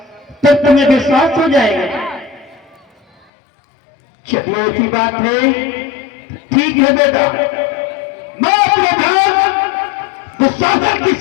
तो तुम्हें विश्वास हो जाएगा। चलिए ऐसी बात है, ठीक है बेटा, मैं अपने भ्रात दुशासन की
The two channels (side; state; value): right; drops out; at 3.2 s